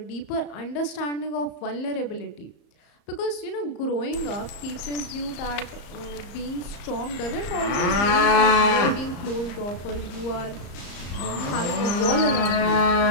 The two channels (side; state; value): right; late; 34 ms